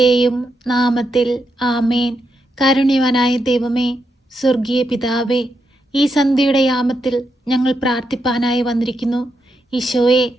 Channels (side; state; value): both; normal; correlation 0.83